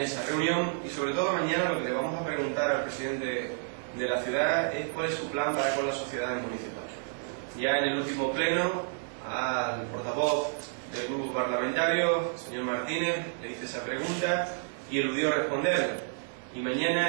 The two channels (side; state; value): left; silent; digital silence